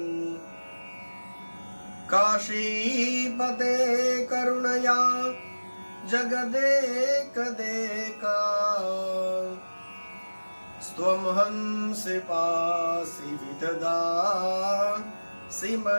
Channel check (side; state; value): both; inverted; correlation -1.00